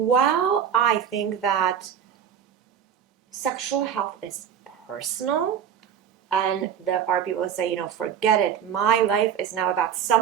I think that sexual health is personal, and there are people who say, forget it, my life is now about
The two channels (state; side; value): quieter; left; 8.6 dB